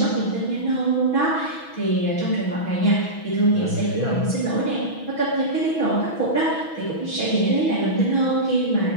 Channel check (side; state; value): right; late; 6.2 ms